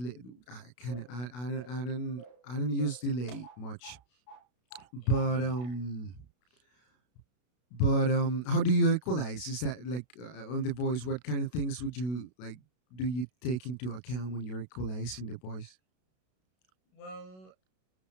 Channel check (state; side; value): late; right; 32 ms